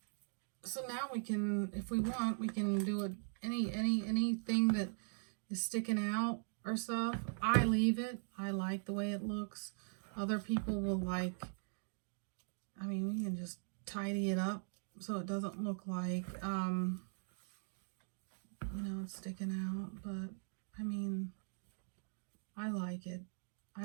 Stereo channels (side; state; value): left; silent; digital silence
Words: so now we can, if we want, we can do anything that is sticking out or stuff. I leave it. I like the way it looks. Other people will like, I mean, we can just tidy it up so it doesn't look like, you know, it's sticking out. But, I mean, I like it. I